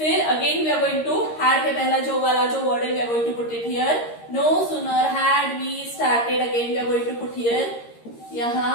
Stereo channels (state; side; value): late; right; 13 ms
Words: again we are going to had के पहला जो वाला जो word है, we are going to put it here. No sooner had we started, again we are going to put here.